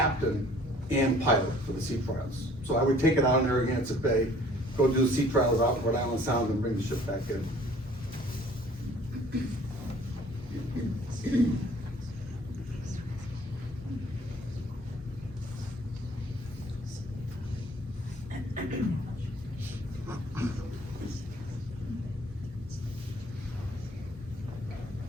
and pilot for the sea trials. So I would take it out in Narragansett Bay, go do the sea trials out in Rhode Island Sound, and bring the ship back in.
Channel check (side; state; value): both; normal; correlation 0.54